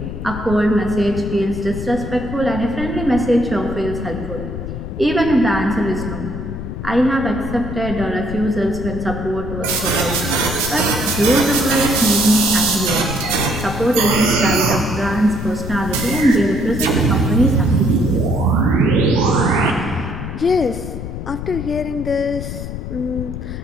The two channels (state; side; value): noise; left; rumble, 7 dB below the sound